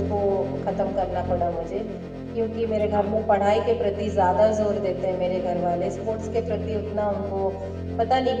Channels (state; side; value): identical; both; correlation 1.00